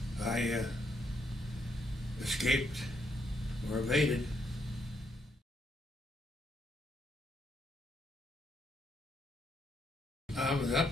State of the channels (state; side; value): normal; both; correlation 0.75